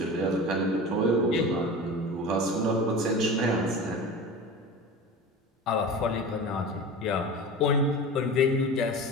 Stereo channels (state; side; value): normal; both; correlation 0.32